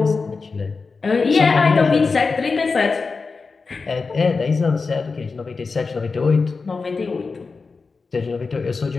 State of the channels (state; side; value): quieter; right; 4.4 dB